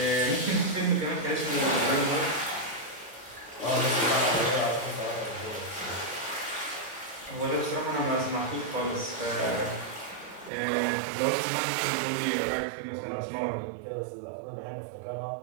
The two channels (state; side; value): drops out; left; at 10.5 s